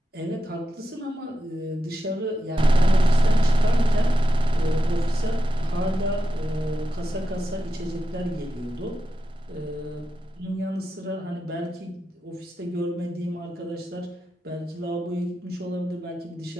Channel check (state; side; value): normal; both; correlation 0.90